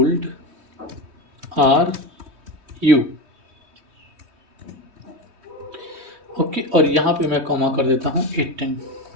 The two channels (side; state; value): left; late; 3.2 ms